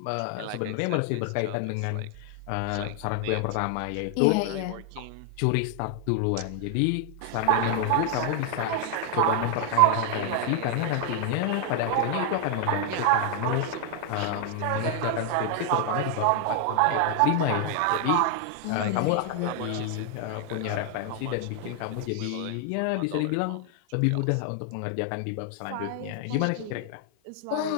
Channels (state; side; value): different; both; correlation 0.00